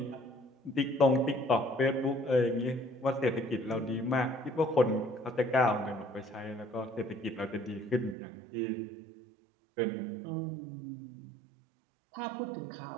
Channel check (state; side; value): drops out; left; at 8.2 s